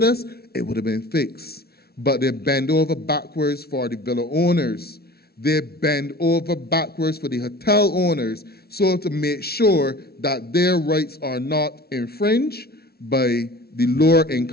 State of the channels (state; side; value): late; right; 0.45 ms